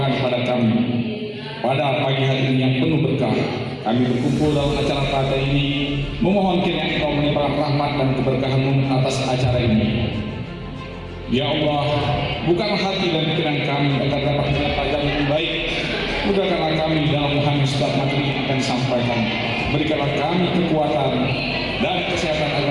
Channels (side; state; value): both; identical; correlation 1.00